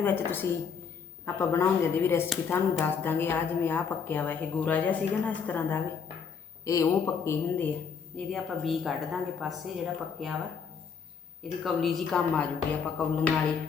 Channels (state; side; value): quieter; right; 6.2 dB